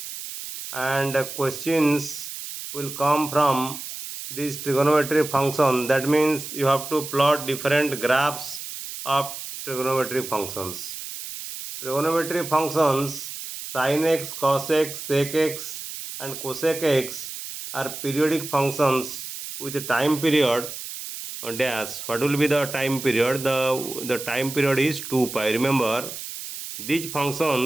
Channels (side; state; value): right; noise; hiss, 9 dB below the sound